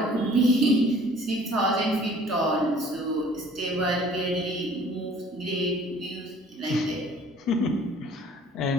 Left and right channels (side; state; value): both; normal; correlation 0.53